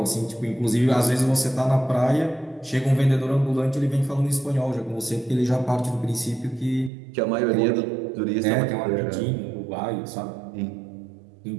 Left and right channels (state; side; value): drops out; left; at 6.9 s